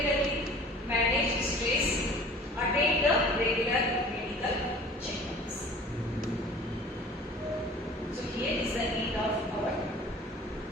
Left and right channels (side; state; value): both; normal; correlation 0.45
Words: manage stress, attend the regular medical checkups. So here is the end of our